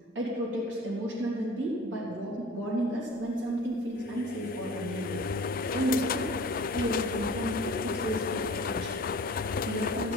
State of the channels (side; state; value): both; normal; correlation 0.43